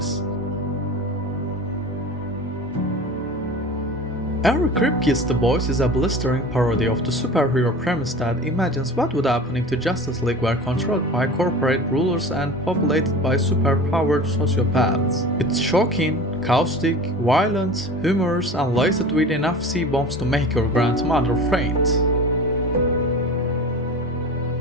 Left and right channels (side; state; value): both; normal; correlation 0.36